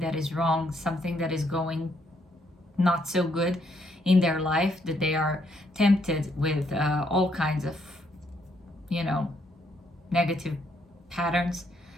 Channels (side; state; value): both; normal; correlation 0.72